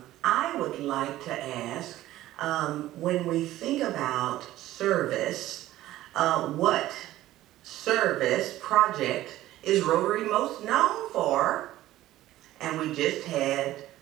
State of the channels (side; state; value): left; quieter; 15.0 dB